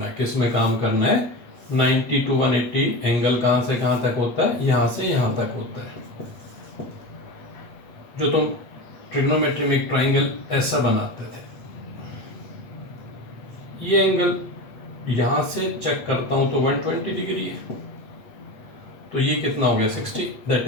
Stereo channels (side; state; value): right; late; 8.2 ms